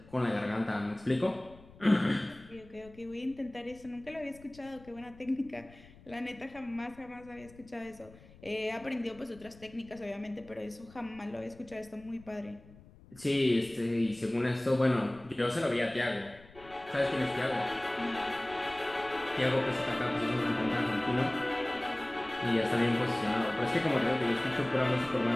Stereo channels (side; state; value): left; noise; rumble, 22 dB below the sound